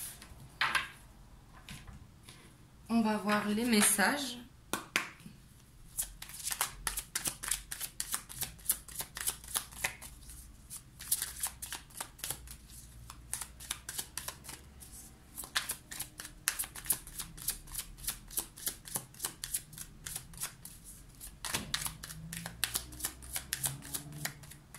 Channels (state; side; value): identical; both; correlation 1.00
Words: On va voir les messages.